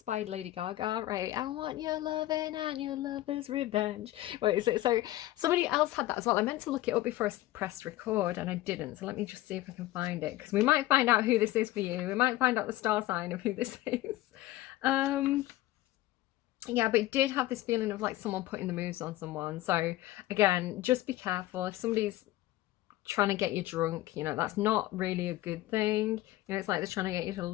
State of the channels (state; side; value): quieter; right; 16.1 dB